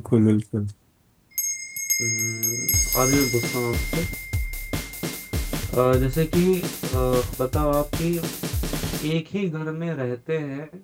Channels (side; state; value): both; identical; correlation 1.00